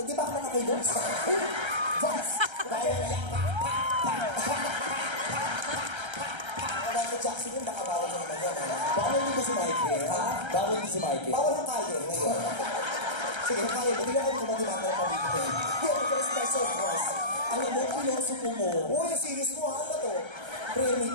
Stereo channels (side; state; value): left; late; 1.3 ms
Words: Hindi ba ako nakakilos? Dahil yan. Michael Jackson yun, baka bawal na naman yan. Bawal din ba si Michael? Ha? Bawal din si Michael? Bawal ang kaya ngayon. Sige, kaya mo. Hindi ako kumagimata ng pamilya. Yan, ito is special cross. Alam mo, pilosopo mo. Uy, yung series mo, ano ba to? Prayer